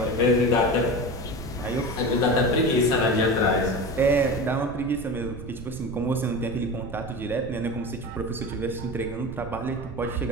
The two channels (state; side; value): noise; right; rumble, 12 dB below the sound